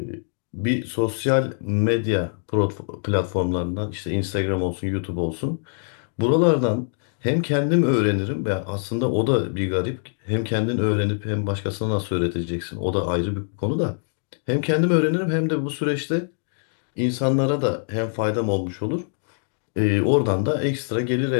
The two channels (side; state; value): right; silent; digital silence